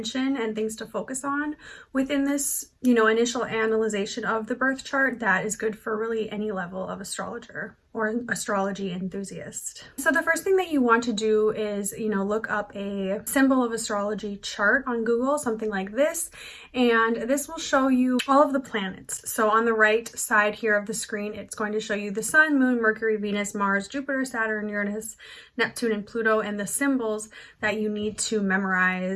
and things to focus on within this, initial analyzation of the birth chart that is good for really any level of astrologer or astrology enthusiast. So the first thing that you want to do is, look up a symbol of astrology chart on Google, something like this, and this will show you all of the planets. So on the right side here of the screen, it's going to show you the Sun, Moon, Mercury, Venus, Mars, Jupiter, Saturn, Uranus, Neptune, and Pluto, and the symbols that you need to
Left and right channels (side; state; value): both; identical; correlation 1.00